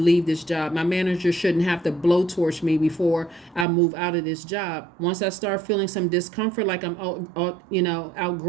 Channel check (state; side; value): drops out; left; at 3.7 s